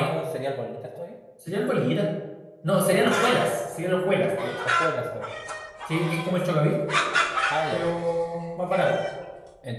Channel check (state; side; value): identical; both; correlation 1.00